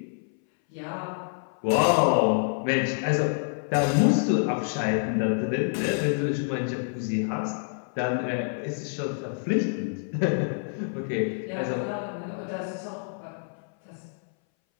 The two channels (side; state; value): right; silent; 60 dB below the other